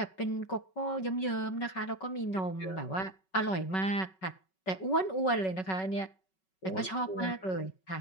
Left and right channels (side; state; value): right; late; 5.3 ms